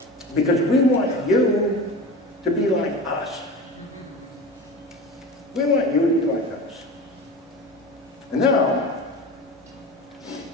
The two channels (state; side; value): normal; both; correlation 0.32